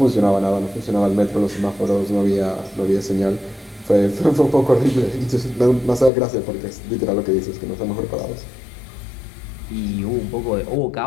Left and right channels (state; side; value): drops out; right; at 6.1 s